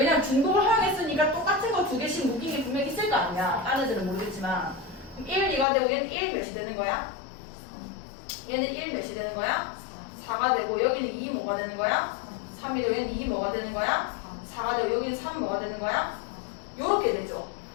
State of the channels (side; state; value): right; drops out; at 5.7 s